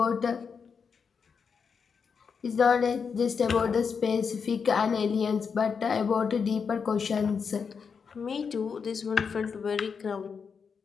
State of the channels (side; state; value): right; quieter; 6.0 dB